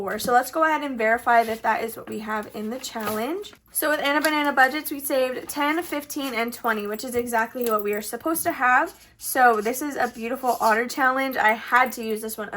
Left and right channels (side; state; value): both; identical; correlation 1.00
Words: So let's go ahead and verify that that is what we have in the challenge. So with Anna Banana Budgets, we saved 10, 15, and 20, which is exactly what we are supposed to have. So this is a beautiful otter challenge. I had to use this one